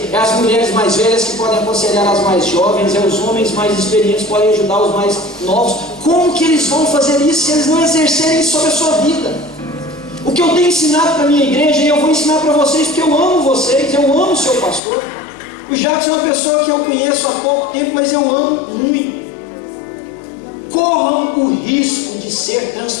É as mulheres mais velhas que podem aconselhar as mais jovens. É os homens mais experientes que podem ajudar os mais novos. Como que eles vão fazer isso se eles não exercerem isso sobre a sua vida? O que eu tenho ensinado para a minha igreja, e eu vou ensinar para vocês, porque eu amo vocês, eu amo o seu pastor. O Jacques é uma pessoa que eu conheço há pouco tempo, mas eu amo muito. Corram o risco de ser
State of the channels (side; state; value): right; drops out; at 14.8 s